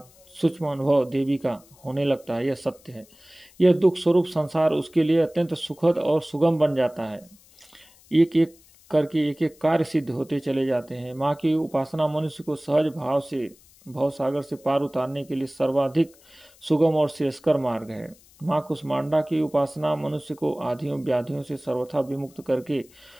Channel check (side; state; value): left; noise; hiss, 27 dB below the sound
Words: सूक्ष्म अनुभव देवी का होने लगता है। यह सत्य है। यह दुख स्वरूप संसार उसके लिए अत्यंत सुखद और सुगम बन जाता है। एक एक करके एक एक कार्य सिद्ध होते चले जाते हैं। माँ की उपासना मनुष्य को सहज भाव से भवसागर से पार उतारने के लिए सर्वाधिक सुगम और श्रेयस्कर मार्ग है। माँ कुसुमांडा की उपासना मनुष्य को आधियों व्याधियों से सर्वथा विमुक्त करके